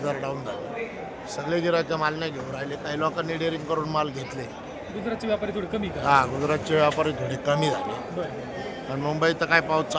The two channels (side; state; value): both; identical; correlation 1.00